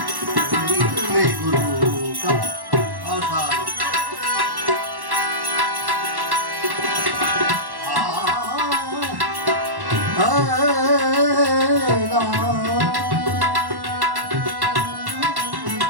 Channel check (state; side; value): late; left; 1.1 ms